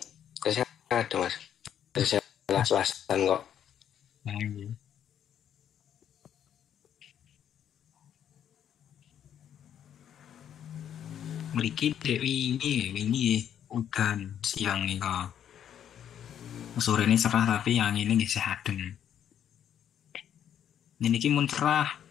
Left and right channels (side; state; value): right; quieter; 9.6 dB